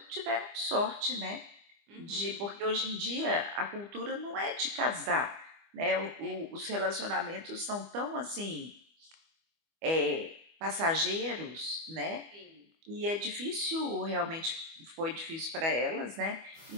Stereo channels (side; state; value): left; late; 25 ms